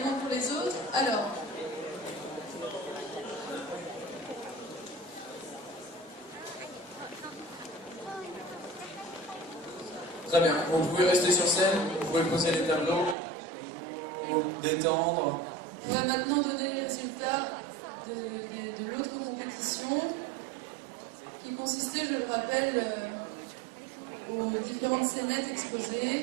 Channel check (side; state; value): left; drops out; at 13.2 s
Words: pour les autres. Alors, Très bien, vous pouvez rester sur scène, vous pouvez poser les tableaux, vous détendre. on va maintenant donner les résultats de l'autre compétition qui consistait, je le rappelle, aux différentes scénettes